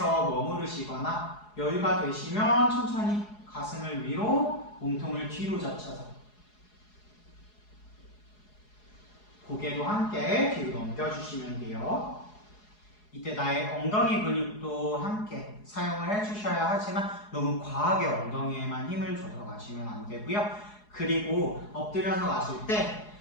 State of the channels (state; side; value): late; right; 4.8 ms